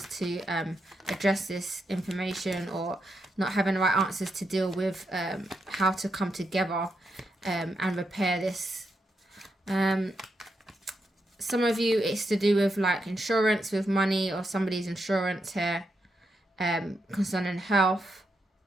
to address this information, or not having the right answers to deal with how to come together and repair this. some of you, it's to do with like insurance, with money, or somebody's insurance here, concerning health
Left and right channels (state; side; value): normal; both; correlation 0.83